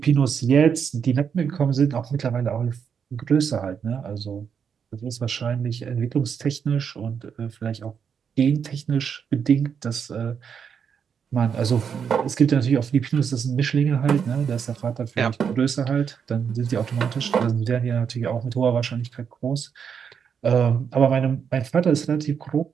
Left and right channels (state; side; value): quieter; left; 7.1 dB